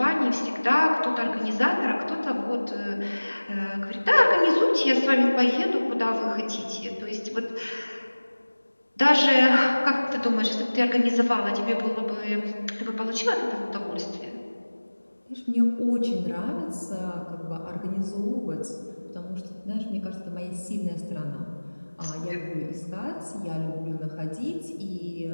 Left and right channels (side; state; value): both; inverted; correlation -1.00